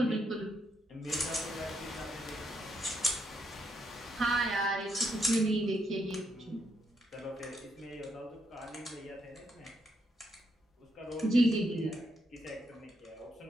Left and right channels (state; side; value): normal; both; correlation 0.77